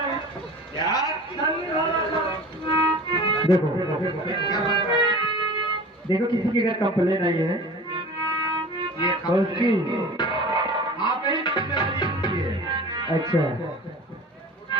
यार ठंडी वाला का देखो देखो, किसी की अगर कंप्लेन आई है ये तो उसकी आप ही जिम्मेदारी है। अच्छा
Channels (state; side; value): normal; both; correlation 0.39